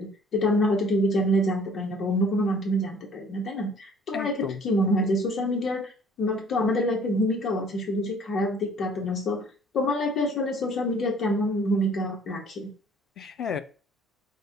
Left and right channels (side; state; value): both; normal; correlation 0.54